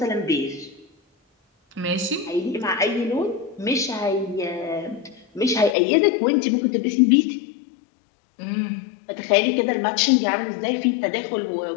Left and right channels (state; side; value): drops out; right; at 5.8 s